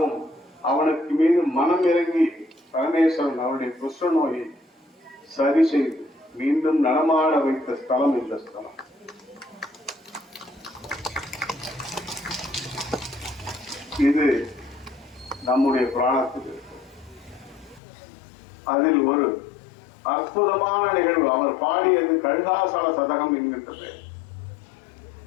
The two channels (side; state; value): right; drops out; at 17.8 s